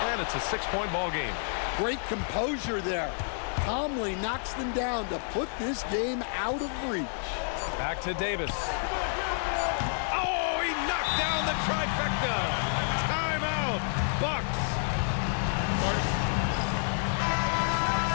and it's a 6-point ball game. Great composure there. Calmly knocks them down to put this game out of reach. Back to Davis. Oh, he knocked down the trifecta. Timeout, Bucks.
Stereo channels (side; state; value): right; silent; 58 dB below the other